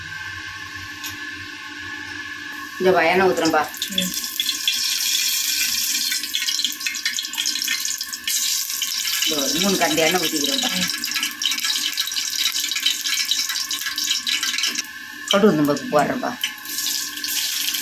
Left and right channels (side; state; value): both; identical; correlation 1.00